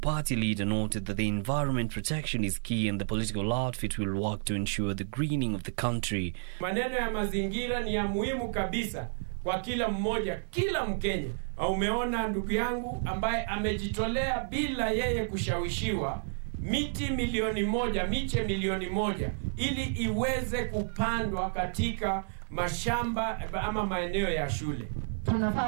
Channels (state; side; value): silent; left; digital silence